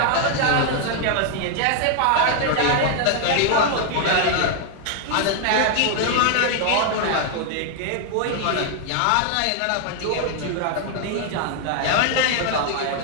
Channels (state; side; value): different; both; correlation 0.00